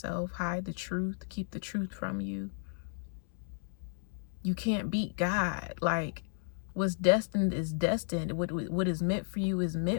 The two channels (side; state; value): right; silent; 56 dB below the other